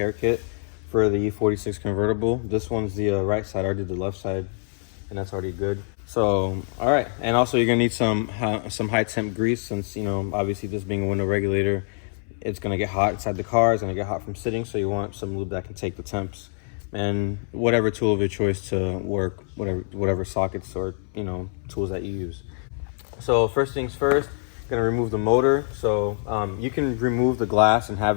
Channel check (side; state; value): right; silent; 62 dB below the other